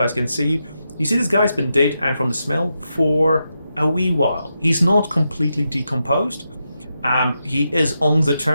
can see you. You see this guy's been dead, and from the smell, for a wee while. He's not completely decomposed. He is on the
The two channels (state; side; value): inverted; both; correlation -0.86